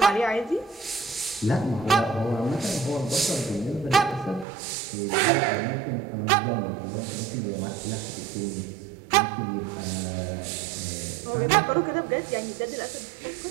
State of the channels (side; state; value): left; drops out; at 4.5 s